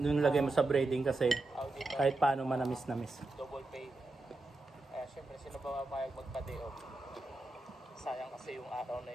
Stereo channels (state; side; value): quieter; left; 3.1 dB